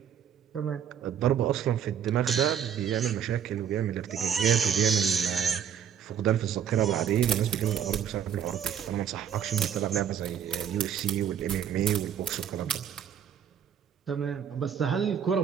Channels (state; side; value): quieter; left; 8.7 dB